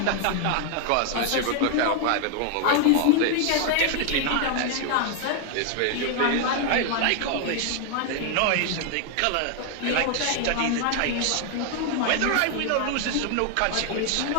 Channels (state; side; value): different; both; correlation 0.00